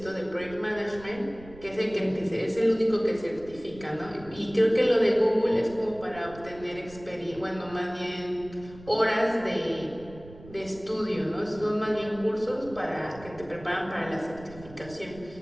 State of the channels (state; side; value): noise; right; rumble, 18 dB below the sound